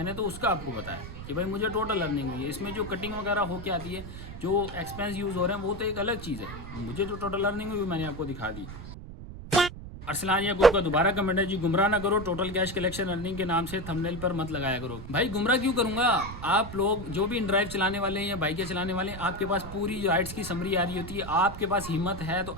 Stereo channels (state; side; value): noise; right; rumble, 11 dB below the sound